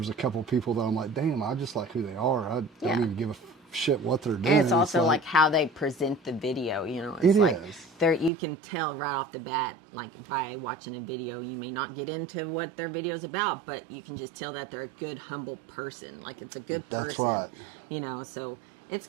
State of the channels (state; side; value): drops out; left; at 8.3 s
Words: a couple people that I'm like, damn, I just like who they are. I don't Yeah. even give a shit what they're doing. and it's also like how they present the video, you know. It It's like is. you can tell right off the bat, like by watching a video, you may not get into what their video's about, but you can just tell that they're a good, humble person. Like, it's a good That's person, right. you know. So it's